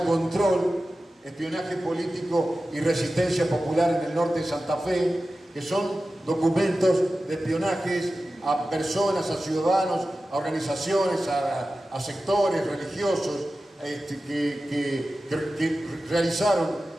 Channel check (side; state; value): both; normal; correlation 0.94